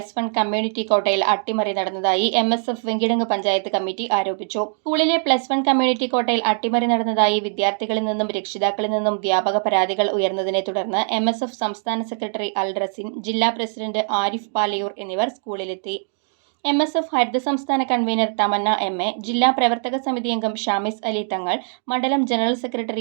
community കോട്ടയിൽ അട്ടിമറി നടന്നതായി MSF വെങ്കിടങ്ങ് പഞ്ചായത്ത് കമ്മിറ്റി ആരോപിച്ചു. സ്കൂളിലെ +1 കമ്മ്യൂണിറ്റി കോട്ടയിൽ അട്ടിമറി നടന്നതായി വിദ്യാർത്ഥികളിൽ നിന്നും രക്ഷിതാക്കളിൽ നിന്നും വ്യാപക പരാതികൾ ഉയർന്നതിനെ തുടർന്ന് MSF സംസ്ഥാന സെക്രട്ടറി അൽ റസിൻ, ജില്ലാ പ്രസിഡന്റ് ആരിഫ് പാലയൂർ എന്നിവർ സ്കൂളിലെത്തി. MSF ഹരിത സംസ്ഥാന കൺവീനർ തമന്ന MA, ജില്ലാ പ്രവർത്തക സമിതി അംഗം ഷാമിസ് അലി തങ്ങൾ, മണ്ഡലം ജനറൽ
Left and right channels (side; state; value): left; silent; digital silence